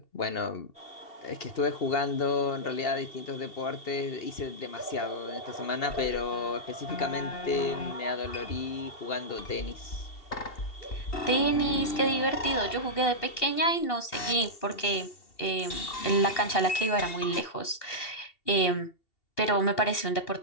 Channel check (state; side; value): late; right; 2.7 ms